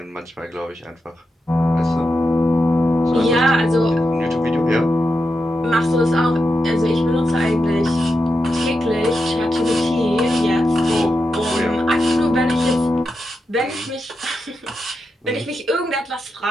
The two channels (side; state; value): both; normal; correlation 0.87